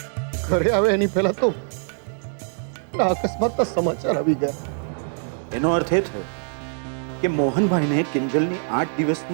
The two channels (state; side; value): silent; left; 57 dB below the other